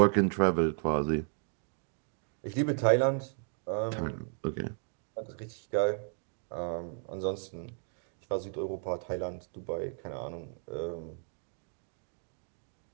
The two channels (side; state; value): left; silent; 55 dB below the other